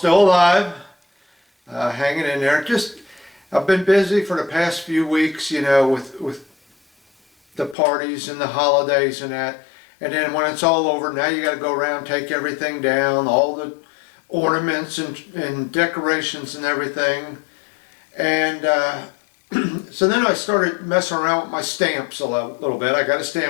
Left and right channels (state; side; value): drops out; right; at 7.8 s